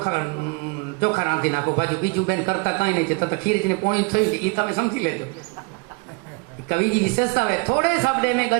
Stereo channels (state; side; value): quieter; left; 31.3 dB